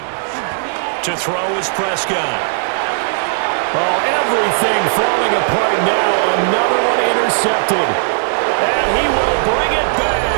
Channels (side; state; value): left; silent; digital silence